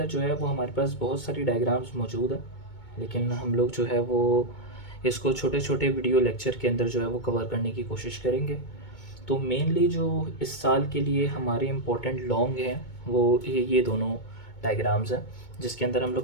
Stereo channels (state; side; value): late; right; 2.2 ms